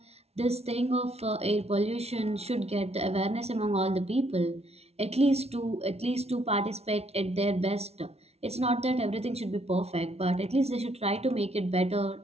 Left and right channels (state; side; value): late; left; 0.31 ms